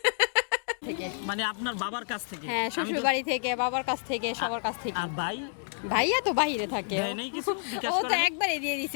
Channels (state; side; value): silent; right; digital silence